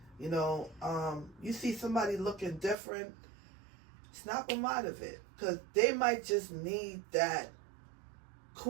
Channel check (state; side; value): drops out; left; at 2.8 s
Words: You see somebody looking different, snap them out of it, because they might just need that